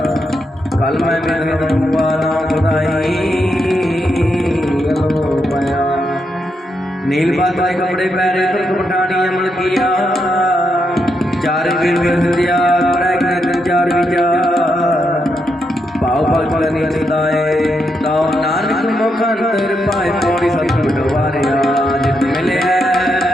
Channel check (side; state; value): both; normal; correlation 0.82